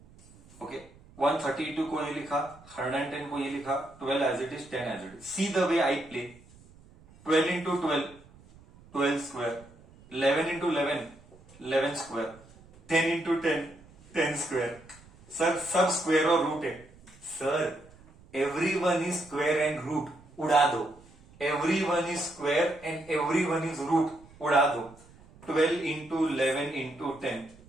Okay, 132 को ये लिखा, 110 को ये लिखा, 12 as it is, 10 as it is. See the way I play, 12 into 12 12 square, 11 into 11 11 square, 10 into 10 10 square. Sir सब square और रूट है। Sir everyone is square and root, उड़ा दो। Everyone is square and everyone is root, उड़ा दो। 12 into 11 into 10,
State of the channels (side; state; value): right; noise; rumble, 24 dB below the sound